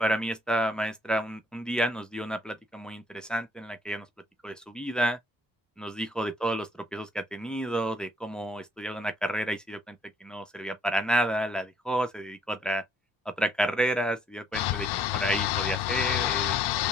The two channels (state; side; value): normal; both; correlation 0.63